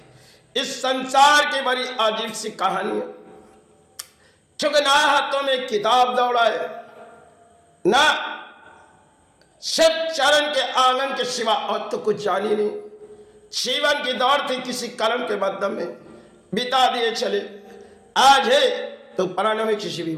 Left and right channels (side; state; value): both; identical; correlation 1.00